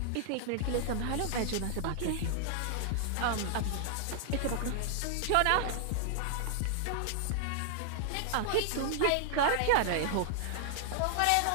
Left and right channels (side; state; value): both; different; correlation 0.00